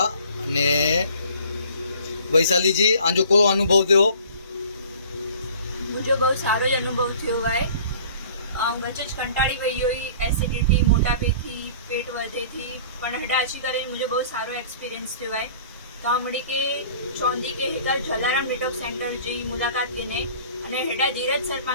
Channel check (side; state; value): both; inverted; correlation -0.49